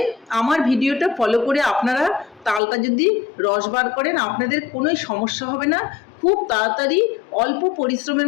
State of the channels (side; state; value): right; drops out; at 2.6 s